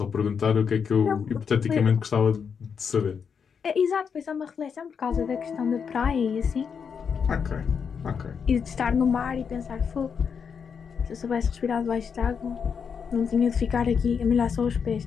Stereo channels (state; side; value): quieter; right; 6.5 dB